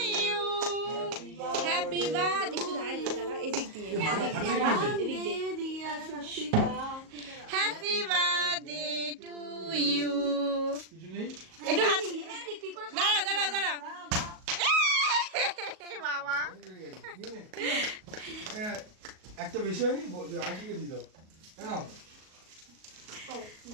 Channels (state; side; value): late; left; 38 ms